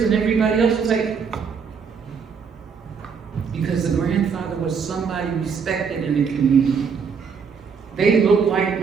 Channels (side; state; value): left; quieter; 6.1 dB